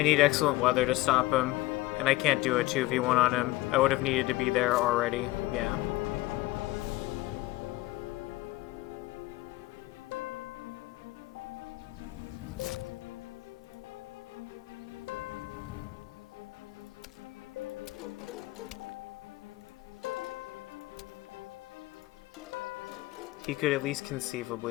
need excellent weather to stop him, and I can't do a 2v1 on him. I would have needed to be there already, yeah. He could at least conceivably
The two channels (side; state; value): right; quieter; 18.8 dB